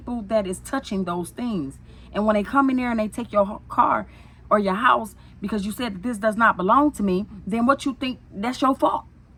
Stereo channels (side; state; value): both; identical; correlation 1.00